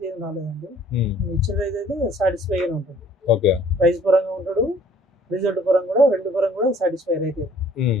ఏం రాలేదండి. ఇచ్చిన రైతు అయితే సాటిస్ఫై గానే ఉంటుంది. ఓకే, ప్రైస్ పరంగా ఉంటాడు, రిజల్ట్ పరంగా కూడా, రెండు పరంగా కూడా సాటిస్ఫై అయితే.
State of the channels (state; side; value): normal; both; correlation 0.57